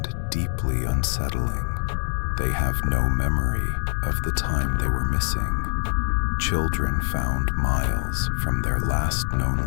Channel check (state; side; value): silent; right; digital silence